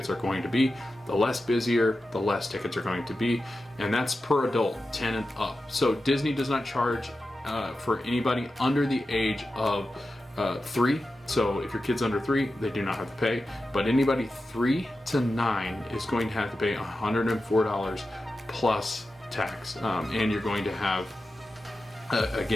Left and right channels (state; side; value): normal; both; correlation 0.92